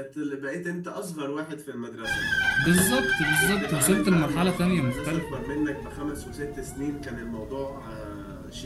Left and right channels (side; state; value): both; identical; correlation 1.00